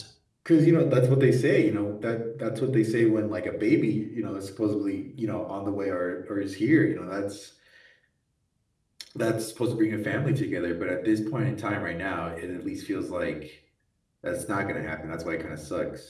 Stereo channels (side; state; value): both; identical; correlation 1.00